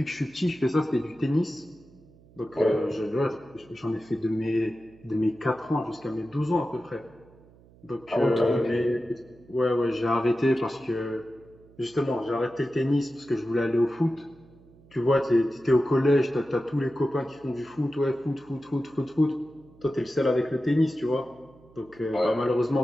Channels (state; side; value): noise; right; hum, 26 dB below the sound